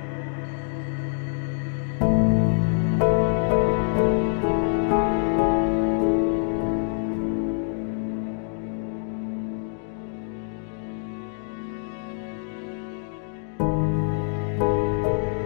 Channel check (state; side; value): silent; right; 61 dB below the other